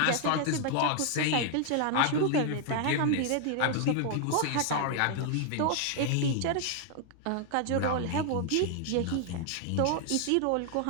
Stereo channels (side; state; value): both; different; correlation 0.00